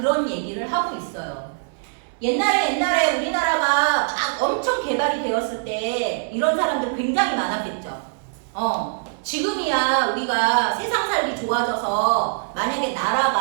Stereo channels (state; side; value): silent; left; 60 dB below the other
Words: 얘기를 하고 있어요. 옛날에 우리나라가 막 엄청 개발이 되었을 때 이런 사람들 굉장히 많았겠죠. 지금이야 우리가 세상 살기 좋아져서 만약에